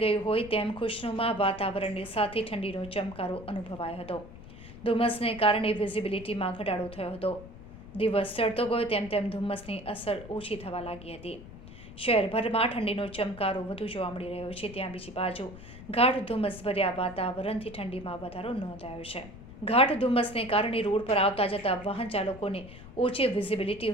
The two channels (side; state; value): left; noise; rumble, 16 dB below the sound